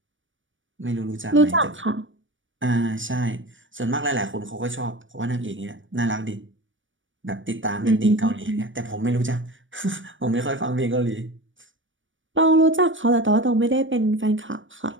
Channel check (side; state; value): left; late; 0.56 ms